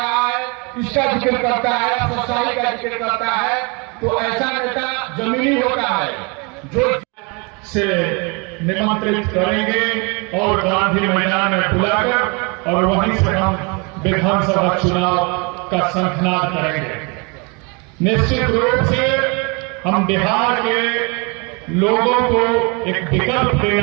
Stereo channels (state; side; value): quieter; left; 31.0 dB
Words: है, इसका जिक्र करता है, सच्चाई का जिक्र करता है, तो ऐसा नेता जमीनी होता है जो से निमंत्रित करेंगे और गांधी मैदान में बुलाकर और वहीं से हम विधानसभा चुनाव का शंखनाद करेंगे। निश्चित रूप से हम बिहार के लोगों को एक विकल्प